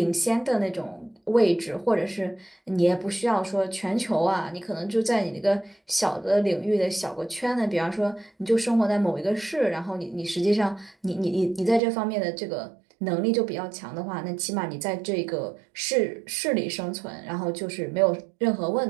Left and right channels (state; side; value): drops out; left; at 11.8 s